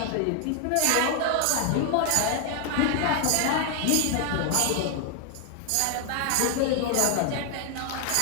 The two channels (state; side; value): different; both; correlation 0.00